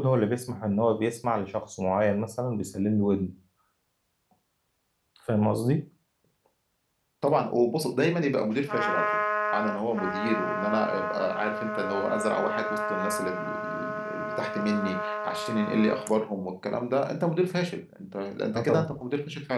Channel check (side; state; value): both; identical; correlation 1.00